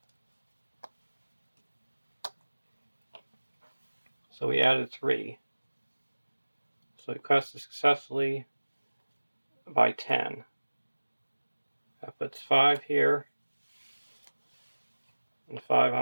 So we added 3. So we quested successfully by 10. That puts 5 here, and 5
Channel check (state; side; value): inverted; both; correlation -1.00